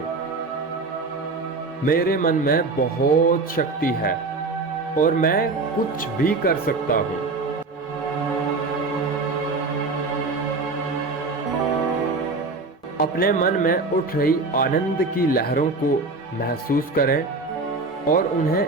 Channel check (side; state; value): left; quieter; 3.7 dB